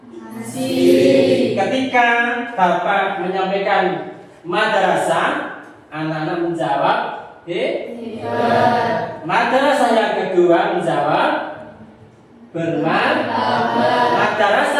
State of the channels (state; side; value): identical; both; correlation 1.00